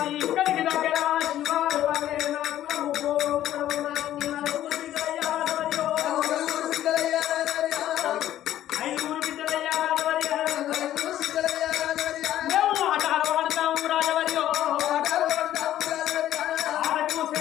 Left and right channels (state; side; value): quieter; right; 12.5 dB